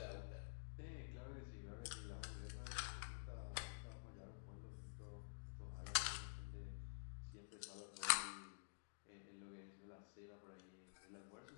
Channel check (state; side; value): silent; right; digital silence